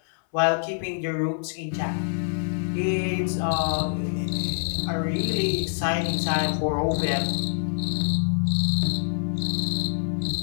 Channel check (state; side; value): silent; right; 61 dB below the other